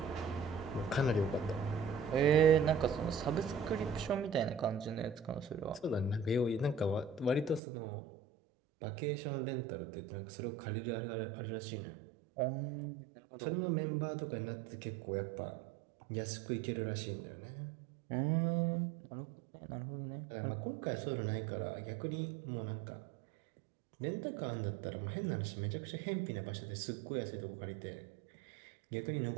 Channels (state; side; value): drops out; left; at 7.6 s